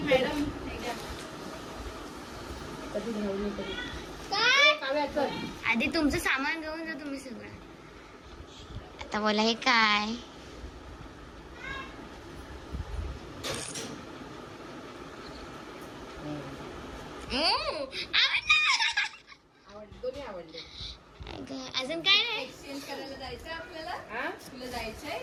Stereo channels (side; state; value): both; identical; correlation 1.00